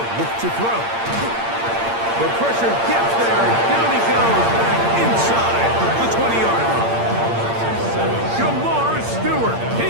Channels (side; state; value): left; late; 8.7 ms